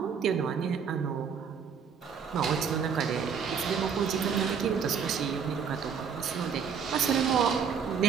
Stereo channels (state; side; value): quieter; left; 6.7 dB